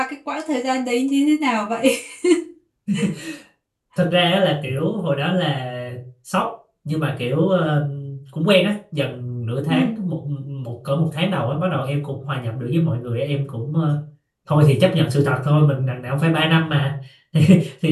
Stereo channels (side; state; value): both; identical; correlation 1.00